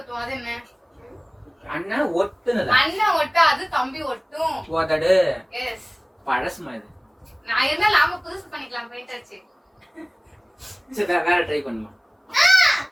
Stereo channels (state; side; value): identical; both; correlation 1.00